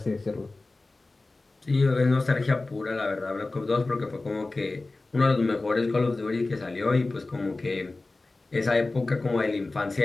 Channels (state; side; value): quieter; right; 3.2 dB